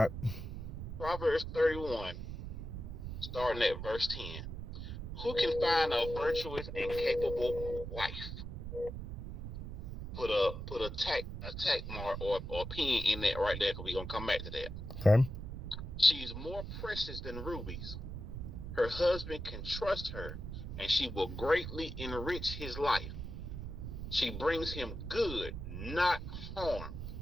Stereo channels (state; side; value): noise; right; rumble, 7 dB below the sound